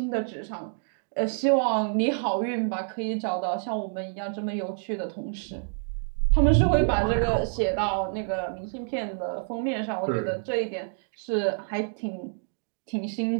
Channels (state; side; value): silent; left; 60 dB below the other